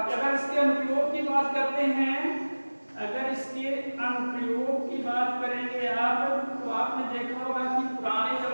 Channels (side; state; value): both; inverted; correlation -1.00